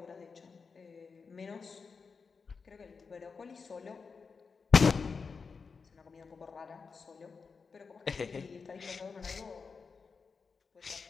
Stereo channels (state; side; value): quieter; right; 5.1 dB